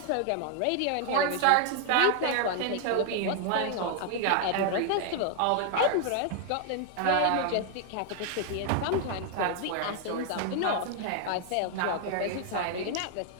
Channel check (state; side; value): different; both; correlation 0.00